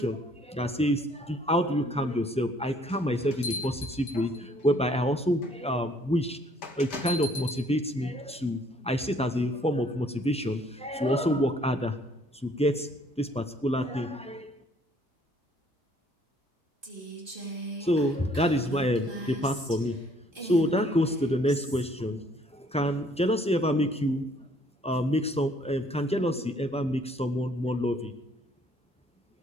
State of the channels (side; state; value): both; normal; correlation 0.62